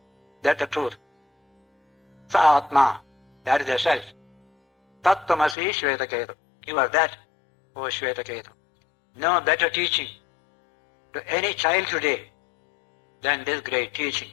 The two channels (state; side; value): drops out; right; at 5.6 s